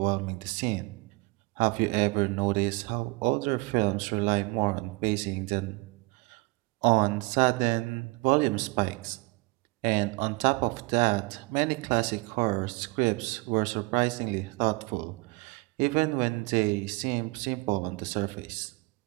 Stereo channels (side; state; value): left; quieter; 26.2 dB